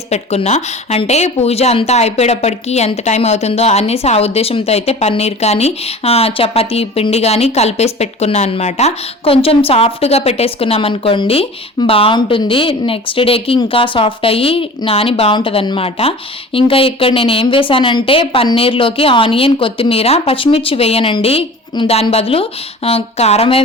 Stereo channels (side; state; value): both; normal; correlation 0.40